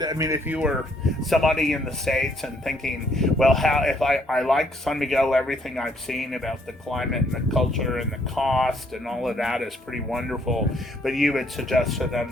I mean, if you were somebody in the States and thinking, well, if I like San Miguel, everything I've seen about the climate and the culture and the cost and all of that is pretty wonderful, but you would suggest to them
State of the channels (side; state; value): both; normal; correlation 0.67